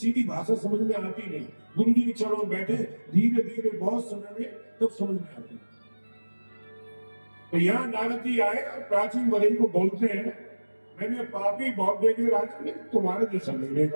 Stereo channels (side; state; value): both; inverted; correlation -1.00